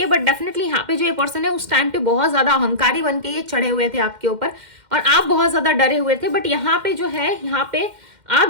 है। बट डेफिनेटली यहाँ पे जो ये पर्सन है उस टाइम पे बहुत ज्यादा अहंकारी बन के ये चढ़े हुए थे आपके ऊपर, और आप बहुत ज्यादा डरे हुए थे। बट यहाँ पे जो है, यहाँ पे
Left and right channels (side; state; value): left; late; 2.1 ms